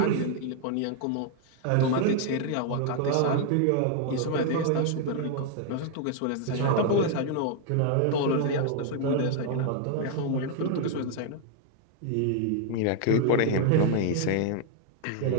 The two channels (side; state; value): both; different; correlation 0.00